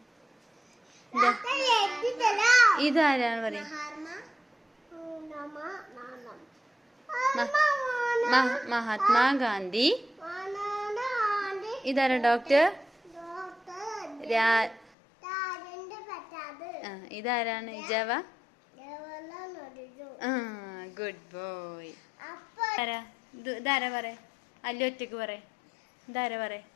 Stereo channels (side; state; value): right; drops out; at 14.9 s